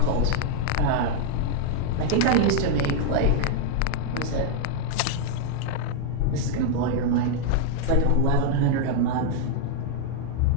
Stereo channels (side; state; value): both; different; correlation 0.00